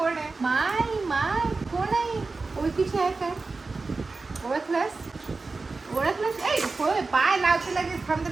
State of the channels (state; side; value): quieter; left; 3.9 dB